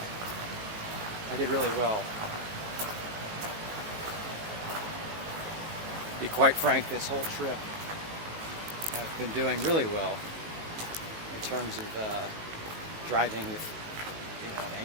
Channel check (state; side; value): late; left; 19 ms